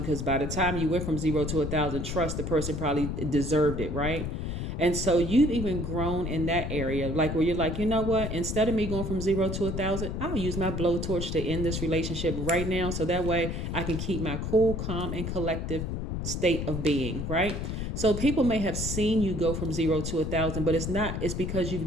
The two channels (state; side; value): noise; left; rumble, 3 dB below the sound